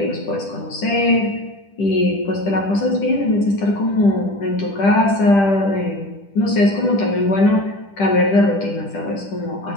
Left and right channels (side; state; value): right; late; 10 ms